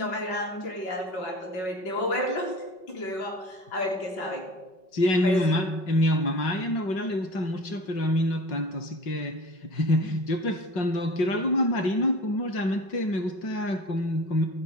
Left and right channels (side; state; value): right; late; 5.3 ms